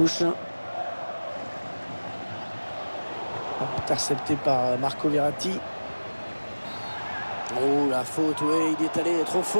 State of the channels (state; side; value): inverted; both; correlation -1.00